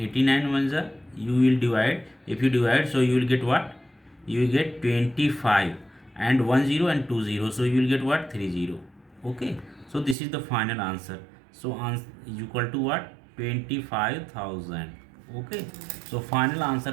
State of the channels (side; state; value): left; drops out; at 10.2 s